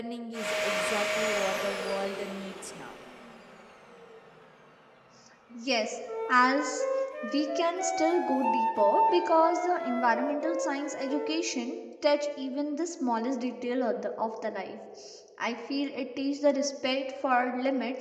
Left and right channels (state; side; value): identical; both; correlation 1.00